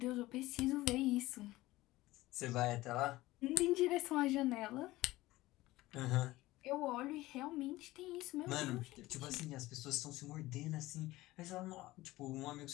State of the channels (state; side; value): quieter; right; 18.1 dB